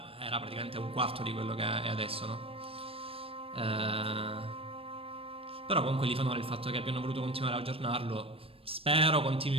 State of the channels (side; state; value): left; late; 0.27 ms